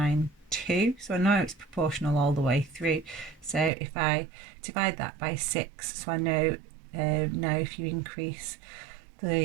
So I know it's proportional all the way through. So if I divide that by 6, so I know now if you increase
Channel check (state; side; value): drops out; left; at 3.7 s